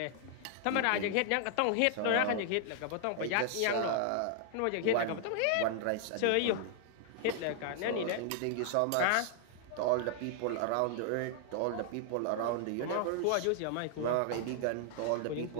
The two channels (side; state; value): both; different; correlation 0.00